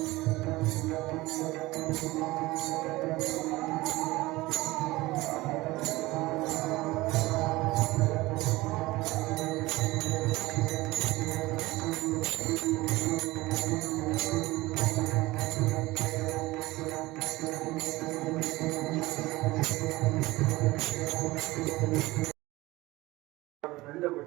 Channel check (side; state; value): left; quieter; 19.8 dB